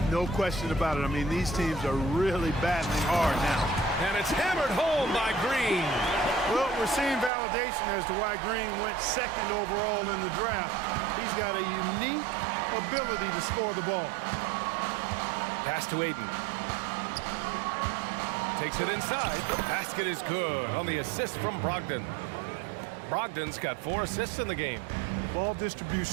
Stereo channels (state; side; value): drops out; left; at 7.3 s